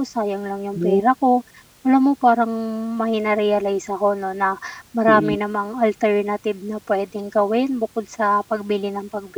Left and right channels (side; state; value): both; identical; correlation 1.00